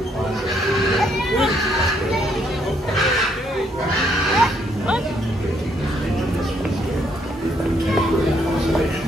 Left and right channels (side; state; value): both; normal; correlation 0.71